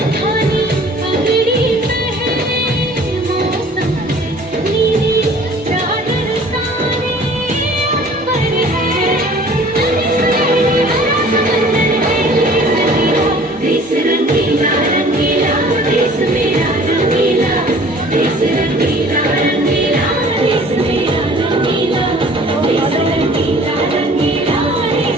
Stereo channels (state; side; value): normal; both; correlation 0.50